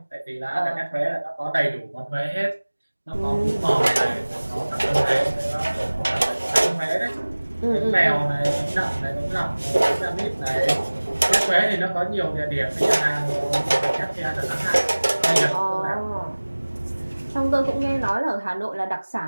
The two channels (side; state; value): both; inverted; correlation -1.00